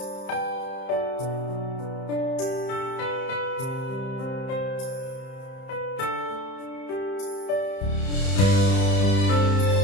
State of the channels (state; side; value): late; right; 31 ms